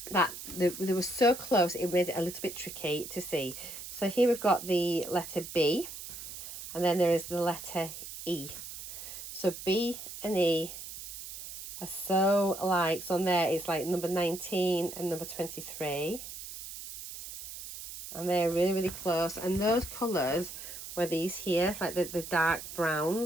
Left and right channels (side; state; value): right; noise; hiss, 11 dB below the sound